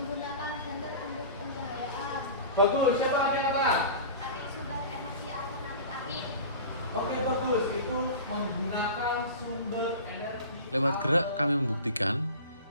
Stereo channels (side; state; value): both; inverted; correlation -0.36